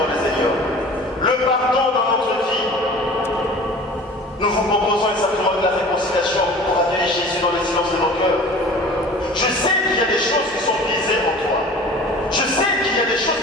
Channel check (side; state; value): both; normal; correlation 0.42